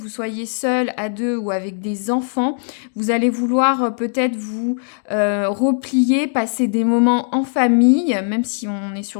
soyez seul, à deux ou avec des enfants. Vous allez vouloir peut-être vous replier, passer des moments en famille, même si on est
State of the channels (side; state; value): right; silent; digital silence